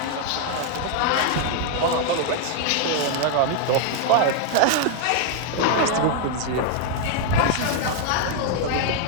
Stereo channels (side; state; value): both; different; correlation 0.00